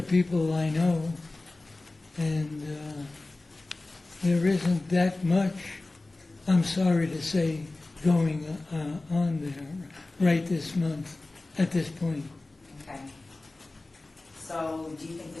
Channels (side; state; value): right; quieter; 3.1 dB